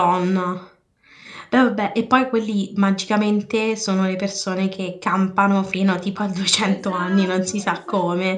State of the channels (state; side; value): identical; both; correlation 1.00